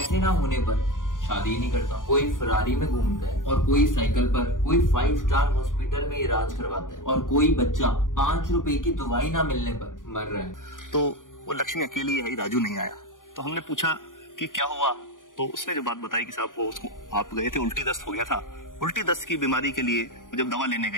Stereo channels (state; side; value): late; right; 0.88 ms